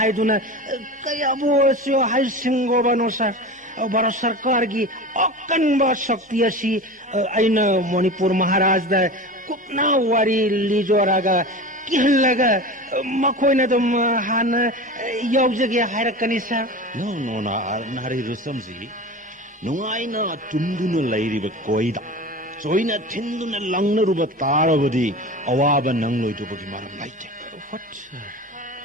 kaya bo sio hai singo bano sa Bharat Sarkar gi akan ba shakti asi aina Manipur Maharaj da kupna wari lijoraga kihlaga makhoi na dum han yaujage hairakani sa no na nari rusamji nungai na tunduna lairiba koida Soina tinduna langna ruba taravadi awaba nangloi to bagi maram laite what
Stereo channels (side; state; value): both; normal; correlation 0.31